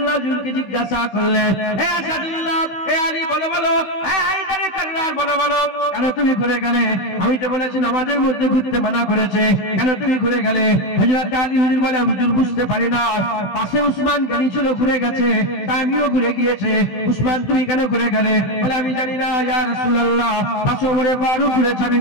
হুজুরকে জিজ্ঞাসা করলেন, হে আসাদুল্লাহ, হে আলী বলো বলো, হে হায়দারে কাররার বলো বলো, কেন তুমি ঘুরে গেলে? আমি তো বলেছি নামাজের মধ্যে ঘুরতে মানা করেছে, কেন তুমি ঘুরে গেলে? হযরত আলী হুজুর বলে, হুজুর বুঝতে পারি না, পাশে উসমান গানি ছিল, ঘুরে গেছে, তাই আমিও ঘুরে গিয়েছে। উসমান তুমি কেন ঘুরে গেলে? বলে আমি জানি না ইয়া রাসূলুল্লাহ, পাশে ওমরে ফারুক ঘুরেছে, আমি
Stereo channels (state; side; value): late; right; 16 ms